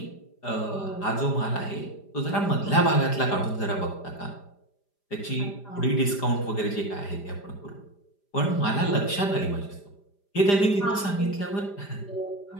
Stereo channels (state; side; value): late; right; 5.0 ms